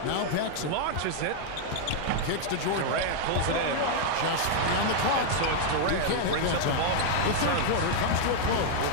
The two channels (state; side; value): different; both; correlation 0.00